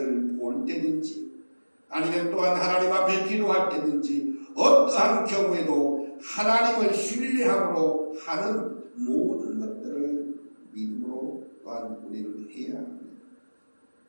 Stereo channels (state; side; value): inverted; both; correlation -1.00